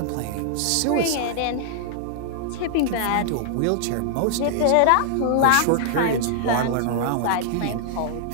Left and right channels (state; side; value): different; both; correlation -0.01